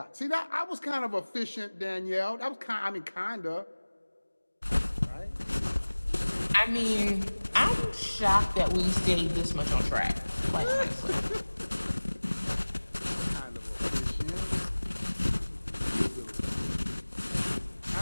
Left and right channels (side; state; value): both; inverted; correlation -1.00